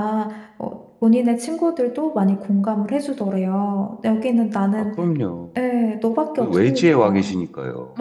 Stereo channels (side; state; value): both; identical; correlation 1.00